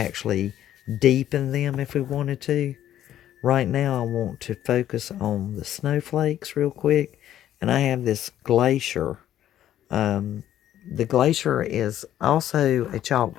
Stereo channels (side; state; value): right; quieter; 11.8 dB